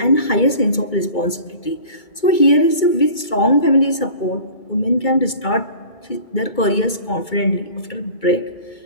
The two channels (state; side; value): late; right; 2.2 ms